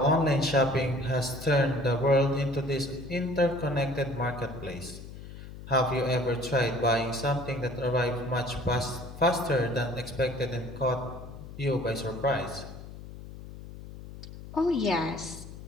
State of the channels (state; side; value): noise; left; hum, 13 dB below the sound